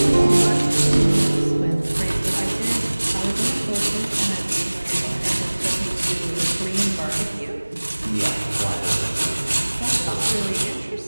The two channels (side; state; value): both; inverted; correlation -1.00